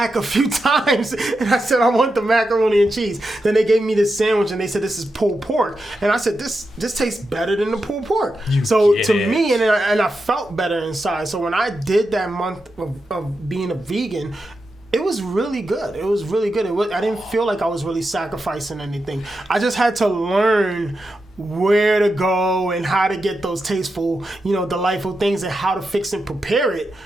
a few times and I said, I want the macaroni and cheese. Then they gave me this sandwich and they said, this is pulled pork. And I said, this tastes better than the pulled pork. Me, and I felt better inside. So when I did that month of being a vegan, it was really good. It was really good. I didn't feel like I was really sacrificing anything. I just had to learn where to go and how to get those tasteful, delightful things, and how to fix and prepare it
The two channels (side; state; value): both; normal; correlation 0.88